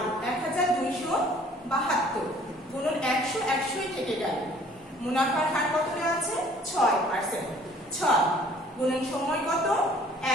1272 গুণন 100, 100ই থেকে গেল। মুনাফার হার কত দেওয়া আছে? 6%, 6 গুণন সময় কত?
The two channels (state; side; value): normal; both; correlation 0.55